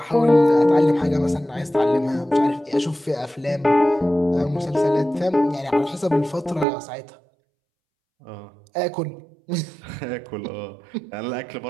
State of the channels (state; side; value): drops out; left; at 6.7 s